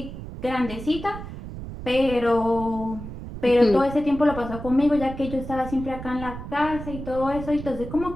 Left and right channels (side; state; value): right; noise; rumble, 10 dB below the sound